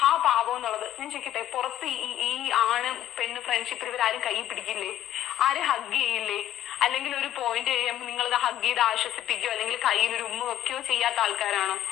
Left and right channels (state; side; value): quieter; right; 12.3 dB